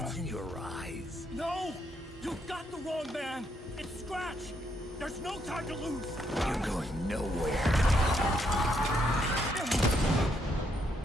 in your eyes. No! You got the wrong man! It's Scratch! There's no time to lose! You're going nowhere.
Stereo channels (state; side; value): normal; both; correlation 0.75